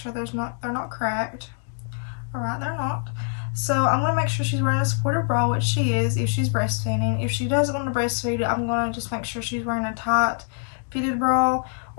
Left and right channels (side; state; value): right; silent; 55 dB below the other